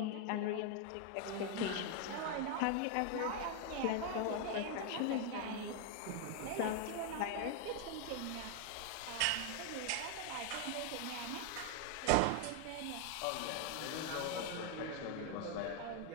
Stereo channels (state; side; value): different; both; correlation 0.01